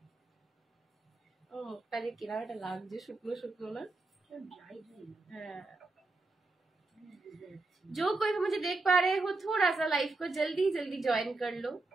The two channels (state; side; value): quieter; left; 3.3 dB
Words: ও মুখটা যে কিরাটা লাগছে, শুকনো শুকনো না? হ্যাঁ, जो कोई भी मुझे देख पा रहे हो थोड़ा सा लाइव को जल्दी जल्दी ज्वाइन कर लो।